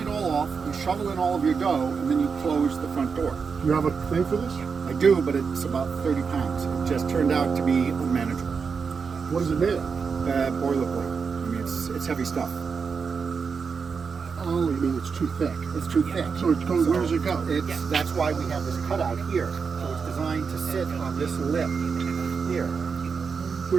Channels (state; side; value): quieter; left; 5.6 dB